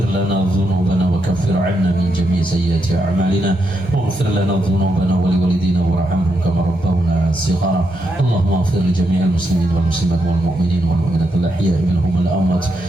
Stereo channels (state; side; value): normal; both; correlation 0.81